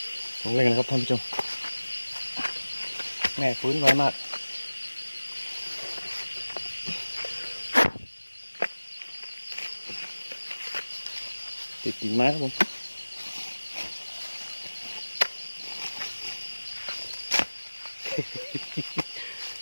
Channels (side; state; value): both; inverted; correlation -1.00